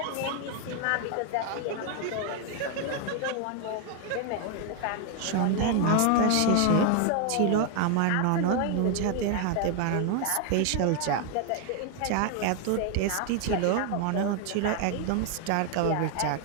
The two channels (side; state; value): both; different; correlation 0.01